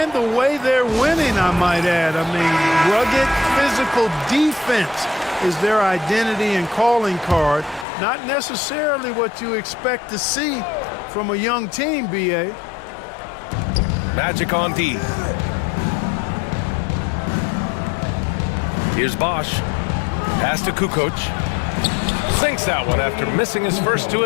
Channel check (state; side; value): drops out; right; at 7.9 s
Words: the way they're winning, I might add. I mean, rugged physical defense is their identity and calling card. Not necessarily what you expect to see from a young team, B.A. Magic on D. Here's Bosch. Pass to Kukoc. Sinks that one after missing his first 2